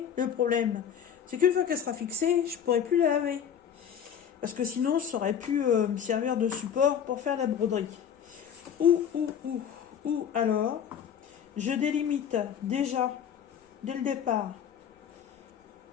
problème, c'est qu'une fois qu'elle sera fixée, je ne pourrai plus la laver. Parce que sinon, ça aurait pu me servir de support pour faire la broderie. Ou alors, je délimite déjà, dès le départ.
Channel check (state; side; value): quieter; right; 8.4 dB